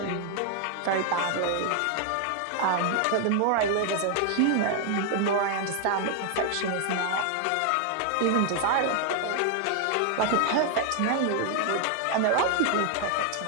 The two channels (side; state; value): both; different; correlation 0.00